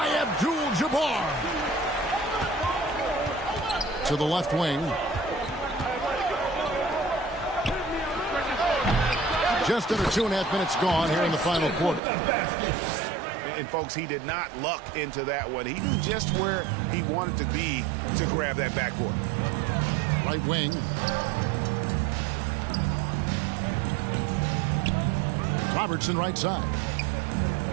Abdul-Jabbar. To the left wing. Just under 2.5 minutes gone here in the final quarter. And, folks, he did not luck into that one. He knew just where he wanted to be to grab that backboard. Right wing. Robertson right side.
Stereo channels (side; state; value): left; drops out; at 12.0 s